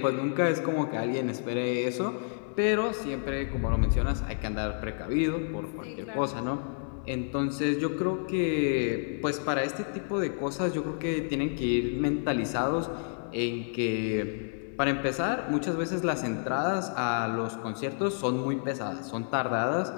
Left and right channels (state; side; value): silent; right; 55 dB below the other